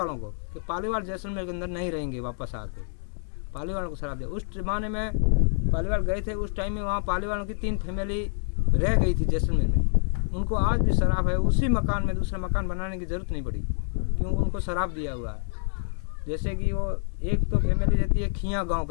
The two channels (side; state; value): right; silent; digital silence